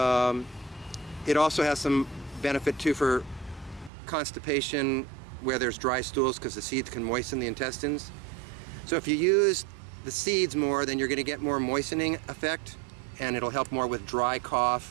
it also has some benefit too for constipation where there's dry stools because the seeds can moisten the intestines. So if you use the seeds more, then you're going to get more moistening effect, and it'll help more with dry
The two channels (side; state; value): left; drops out; at 3.9 s